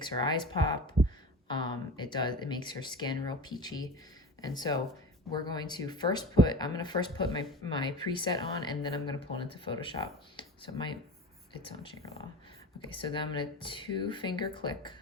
her eyes pop. It makes her skin real peachy. And so we're going to I'm going to first put my preset on, and then I'm going to pull it into Photoshop. So it's on Shangri-La. Okay, so then I'm going to two-finger click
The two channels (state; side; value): normal; both; correlation 0.33